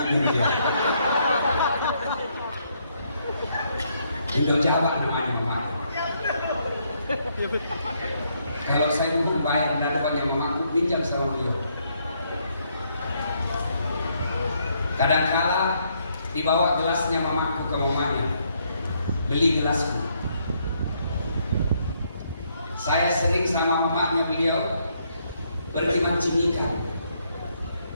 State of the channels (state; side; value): inverted; both; correlation -0.73